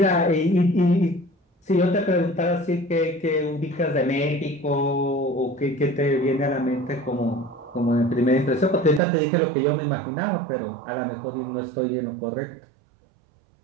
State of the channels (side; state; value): left; drops out; at 9.0 s